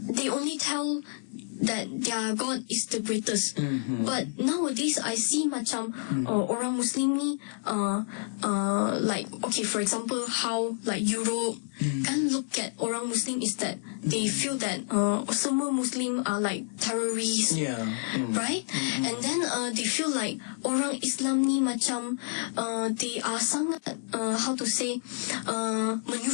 they only tell that their God is the greatest. But nowadays I see macam orang Muslim ni like, okay, for example, how like Europe kan look at orang Muslim is that they feel that semua Muslim are like terrorists, right? And then they feel like orang Islam ni macam they are sangat how to say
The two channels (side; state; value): right; silent; digital silence